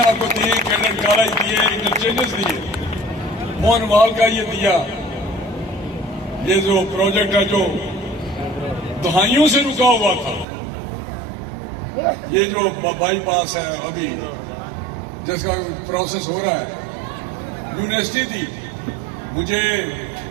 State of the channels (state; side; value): drops out; left; at 10.5 s